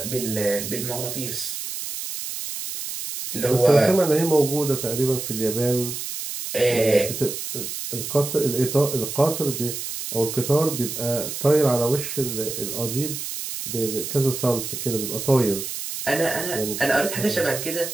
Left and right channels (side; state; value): right; noise; hiss, 6 dB below the sound